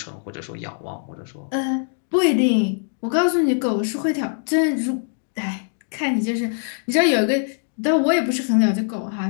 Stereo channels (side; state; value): right; silent; digital silence